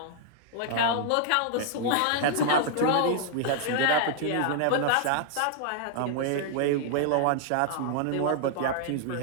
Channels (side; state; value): both; different; correlation -0.01